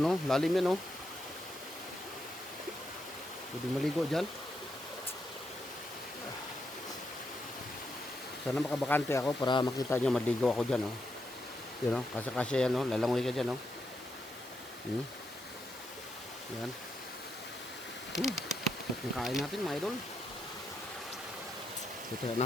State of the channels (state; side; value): normal; both; correlation 0.82